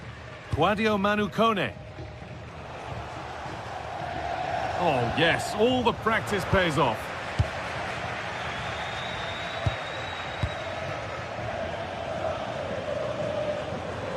Claudio Manucone. Oh, yes, all the practice pays off.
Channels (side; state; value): both; identical; correlation 1.00